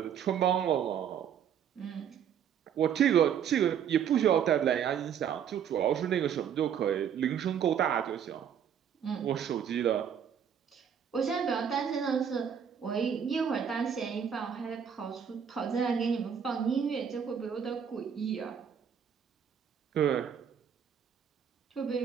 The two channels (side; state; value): left; quieter; 8.2 dB